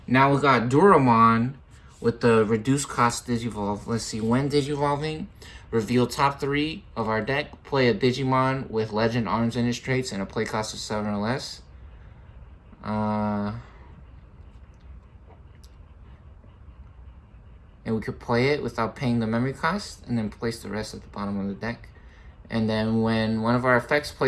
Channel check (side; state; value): both; identical; correlation 1.00